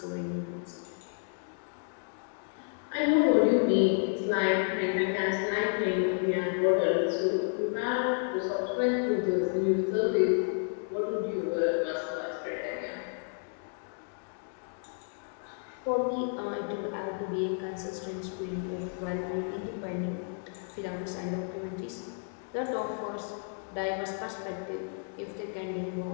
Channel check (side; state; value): right; silent; 57 dB below the other